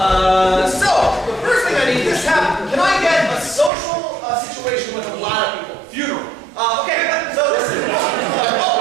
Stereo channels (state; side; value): drops out; left; at 3.7 s